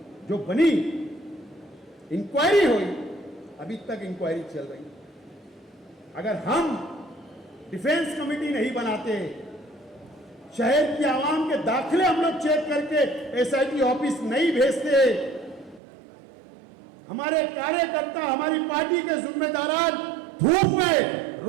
जो बनी, इंक्वायरी हुई, अभी तक इंक्वायरी चल रही। अगर हम डिफेंस कमेटी नहीं बनाते, शहर की आवाम के दाखिले हम लोग चेक करके एसआईटी ऑफिस नहीं भेजते, हमारे कार्यकर्ता, हमारी पार्टी के जिम्मेदार धूप में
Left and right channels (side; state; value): left; drops out; at 15.8 s